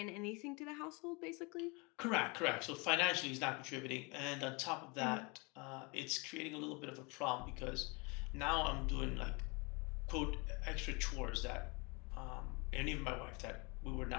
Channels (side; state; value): right; quieter; 29.1 dB